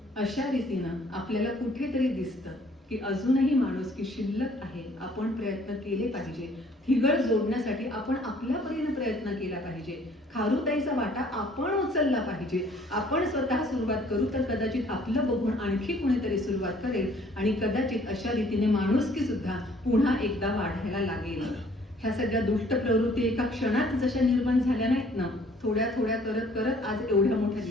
अशा रीतीनं आपल्याला कुठेतरी दिसतं की अजूनही माणुसकी शिल्लक आहे. आपण प्रयत्न केले पाहिजे. ठिगळ जोडण्यासाठी आपण आपल्या परीने प्रयत्न केला पाहिजे. खारुताईचा वाटा आपण उचलला पाहिजे. आपण स्वतः सुरुवात करू तर कदाचित आपलं बघून आणखी कुणीतरी सुरुवात करेल आणि कदाचित अशा रीतीने माणुसकी सुद्धा पुन्हा एकदा वाढायला लागेल. ह्या सगळ्या दुष्ट प्रवृत्ती एका क्षणात जशा निर्माण झाल्या नाहीत ना, थोड्या थोड्या करत करत आज एवढ्या मोठ्या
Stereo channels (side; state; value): both; normal; correlation 0.58